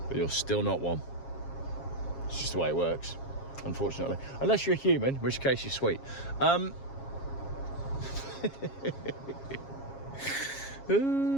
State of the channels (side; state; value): right; late; 7.4 ms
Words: but you're still not one. It's just the way it works, unfortunately. Unless you're a human, in which case you're sweet.